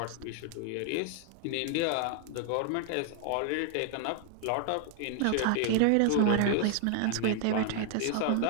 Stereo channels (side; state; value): both; different; correlation 0.00